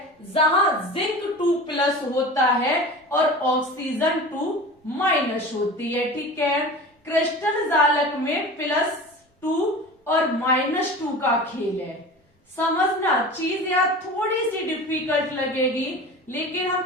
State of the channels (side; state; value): both; normal; correlation 0.35